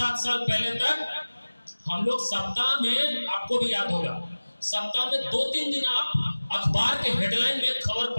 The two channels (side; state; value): both; inverted; correlation -1.00